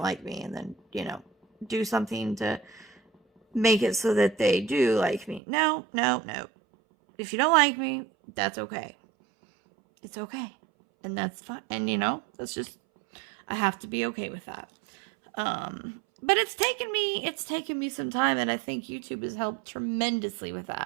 like me, and then, you know, do something to make it so that they do like me. No. If you don't like me, that's okay. It's okay. And that's fine. And, you know, that's just, I have to be okay with that. But it's taken me some time, and I think YouTube has helped tremendously with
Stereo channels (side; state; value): left; drops out; at 5.4 s